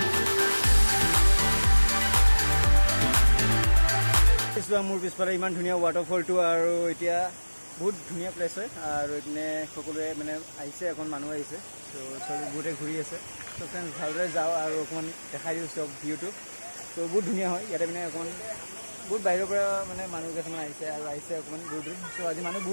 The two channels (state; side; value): inverted; both; correlation -1.00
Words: মোৰ পিছফালে ইমান ধুনীয়া ৱাটাৰফলটো আৰু এতিয়া বহুত ধুনীয়া প্লেচ হয় আৰু এইপিনে সকলোৱে মানে আহিছে এখন মানুহ আহিছে ত' চব বহুতে ঘূৰি আছে ত' ফ্ৰেণ্ডছ ভালদৰে যাওঁ আৰু অকণমান দেখাই দিওঁ চব ভিউটো ত' বহুত ধুনীয়া হয় ইয়াতে মানে অকণমান বহুত বাহিৰৰ পৰা মানে মানুহ কিছুমান আহিছে আৰু আহিছে অকণমান দূৰ দূৰ চ' আজি মানুহ